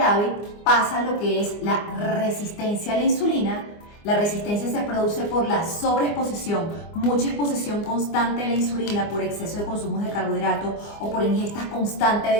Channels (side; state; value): right; late; 24 ms